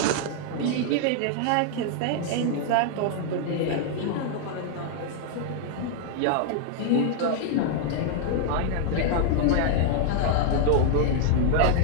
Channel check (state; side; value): different; both; correlation 0.00